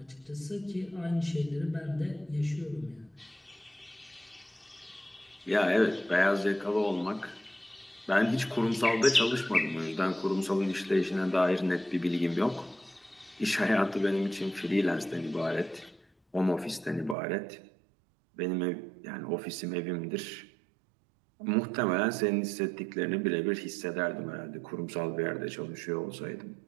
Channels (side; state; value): left; drops out; at 17.2 s